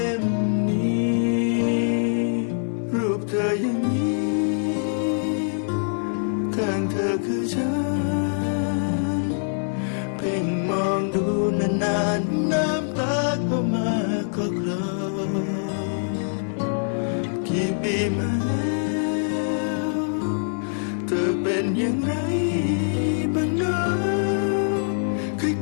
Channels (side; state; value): right; silent; digital silence